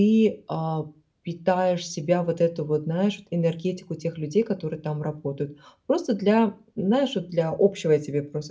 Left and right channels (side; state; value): both; identical; correlation 1.00